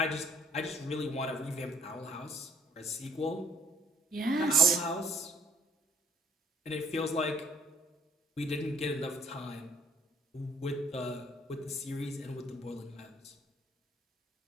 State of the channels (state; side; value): normal; both; correlation 0.60